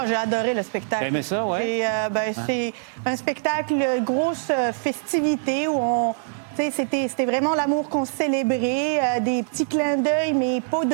j'ai adoré le spectacle. T'as aimé ça, ouais? C'est un spectacle, grosse festivité où on... C'était vraiment l'amour qu'on célébrait, des petits clins d'œil, mais pas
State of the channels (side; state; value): left; silent; 59 dB below the other